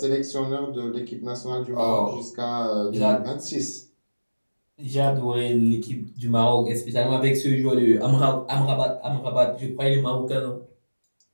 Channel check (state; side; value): inverted; both; correlation -1.00